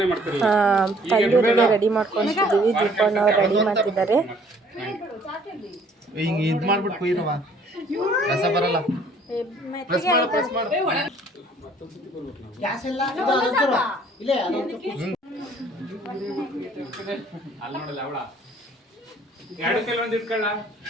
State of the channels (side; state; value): both; normal; correlation 0.58